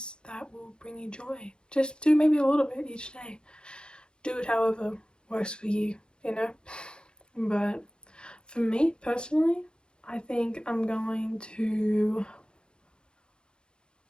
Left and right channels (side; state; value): right; late; 0.050 ms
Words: that will bring you joy. Just do maybe a little bit each day. Do it however works for you, But for me personally, I think I'm gonna